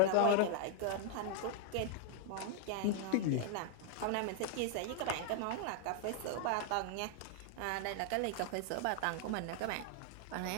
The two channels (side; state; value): both; different; correlation 0.00